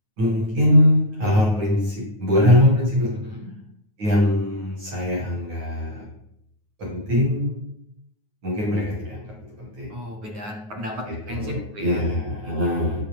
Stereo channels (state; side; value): late; left; 9.4 ms